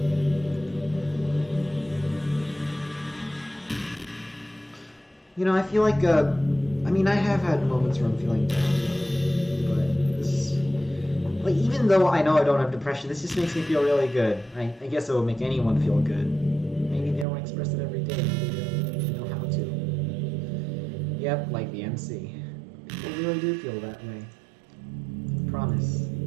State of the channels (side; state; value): left; drops out; at 17.2 s